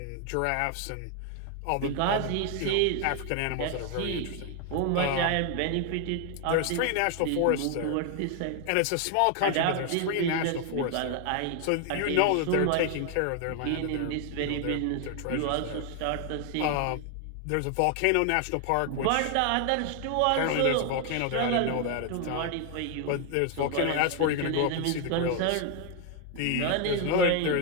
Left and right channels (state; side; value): different; both; correlation 0.00